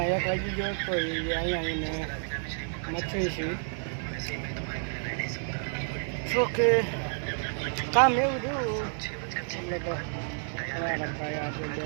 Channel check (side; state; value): left; silent; 56 dB below the other